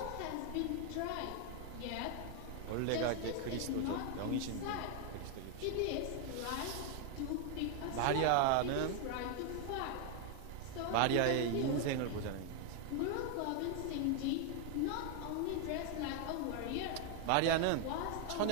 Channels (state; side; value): different; both; correlation 0.00